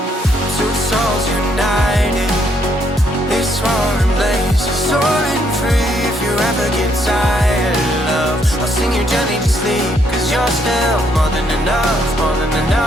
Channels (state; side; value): normal; both; correlation 0.72